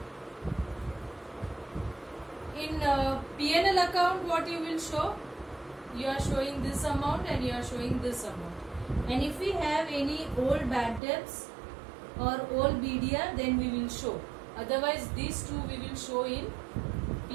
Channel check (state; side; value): drops out; left; at 11.0 s